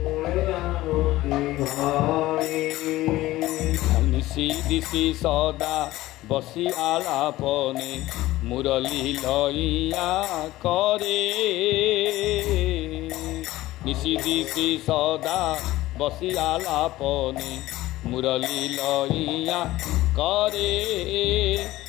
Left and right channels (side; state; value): right; quieter; 16.9 dB